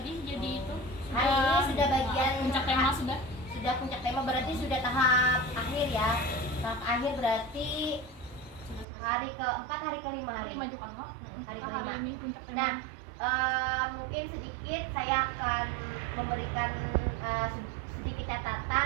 jadi itu. Hari ini sudah bagian puncak tema sudah. Sudah puncak tema, berarti sudah tahap akhir ya. Tahap akhir berarti hari ke-4, hari ke-5 hari. Majukan Wak. Hari Hari ke-5. ini puncak tema. Nah, mungkin sedikit saya akan memberikan sedikit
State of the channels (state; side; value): drops out; left; at 8.8 s